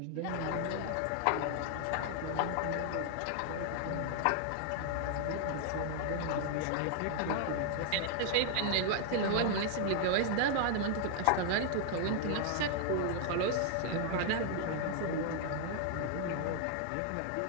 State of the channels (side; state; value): both; different; correlation 0.00